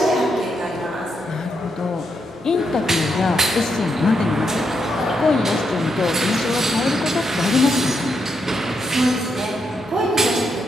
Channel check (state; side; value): normal; both; correlation 0.80